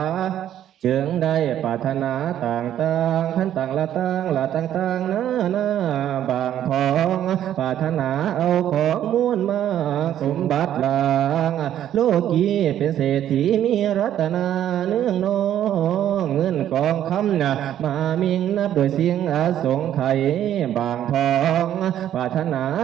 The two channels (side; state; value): left; quieter; 11.1 dB